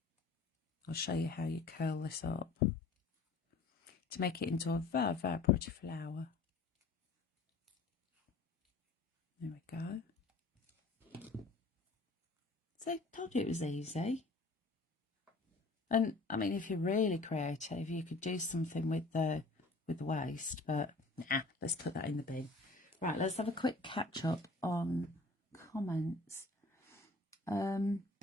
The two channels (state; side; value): quieter; right; 3.5 dB